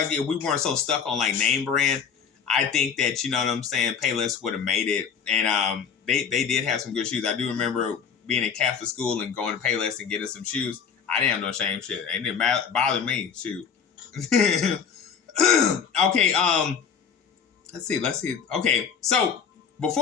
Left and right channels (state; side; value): quieter; right; 6.9 dB